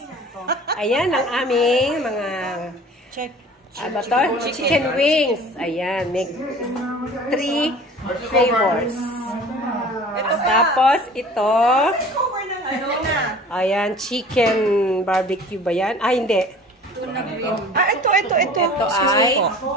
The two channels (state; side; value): normal; both; correlation 0.45